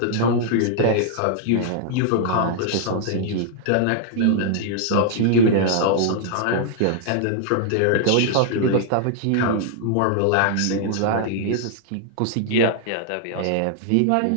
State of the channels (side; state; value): both; different; correlation -0.01